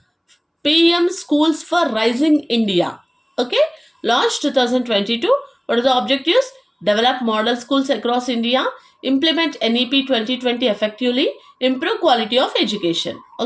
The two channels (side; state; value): both; identical; correlation 1.00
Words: PM Schools for Rising India. Okay, launched 2022. What are the objectives? Develop model schools across India, implement NEP 2020 effectively, improve quality of education.